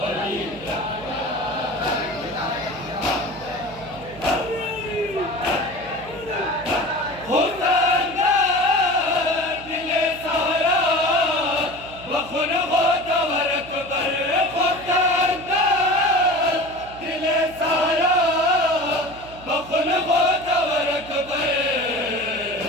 अली खुदा दिले सारा बखुन हो दवर अकबर खुदा दिले सारा बखुन हो दवर अकबर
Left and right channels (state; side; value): noise; right; hum, 18 dB below the sound